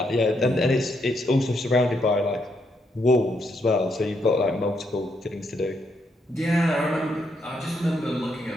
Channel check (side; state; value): both; normal; correlation 0.77